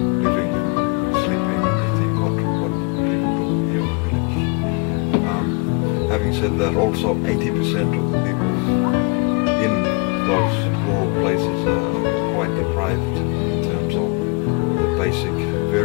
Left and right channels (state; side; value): quieter; right; 31.7 dB